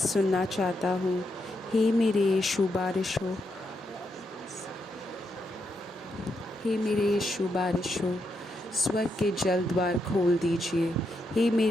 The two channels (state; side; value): normal; both; correlation 0.81